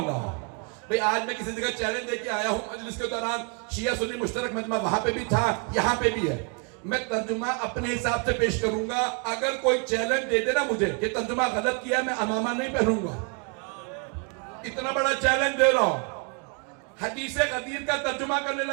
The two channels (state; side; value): quieter; left; 37.3 dB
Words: ہوں. بھئی آج میں کسی جگہ چیلنج دے کے آیا ہوں مجلس کے دوران, شیعہ سنی مشترک مجمع وہاں پہ بھی تھا یہاں پہ بھی ہے. میں ترجمہ اپنے حساب سے پیش کروں گا. اگر کوئی چیلنج دے دے نا مجھے کہ ترجمہ غلط کیا, میں امامہ نہیں پہنوں گا. اتنا بڑا چیلنج دے رہا ہوں. حدیث غدیر کا ترجمہ کرنے